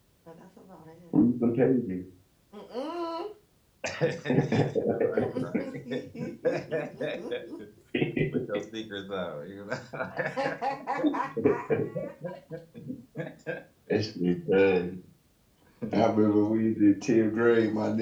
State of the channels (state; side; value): identical; both; correlation 1.00